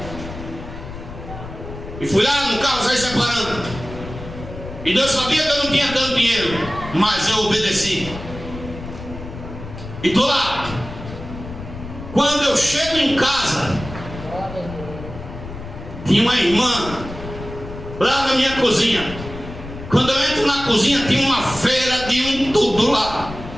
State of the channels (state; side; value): noise; left; rumble, 12 dB below the sound